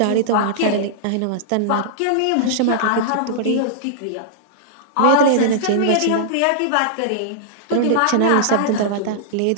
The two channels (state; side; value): different; both; correlation -0.02